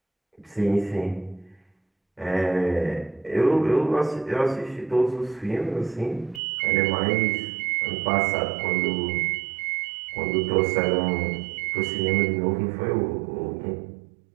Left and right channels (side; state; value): left; drops out; at 6.4 s